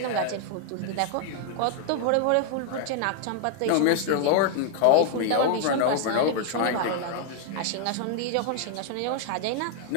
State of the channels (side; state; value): both; different; correlation 0.00